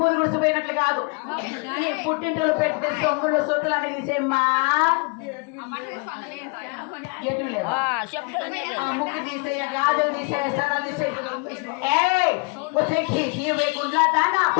గుడిసిపోయినట్లు కాదు, పుట్టింటలు పెట్టి సొమ్ములు సొత్తులు అని తీసేమ్మా. ముక్కు తీసేయ, గాజులు తీసేయ, సరాలు తీసేయ. గుడ్లా దానా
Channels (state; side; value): quieter; right; 31.1 dB